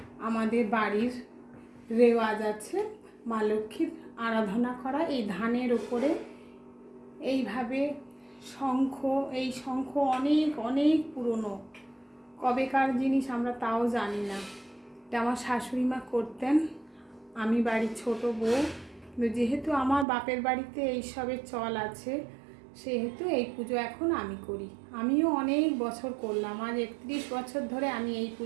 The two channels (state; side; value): drops out; left; at 20.1 s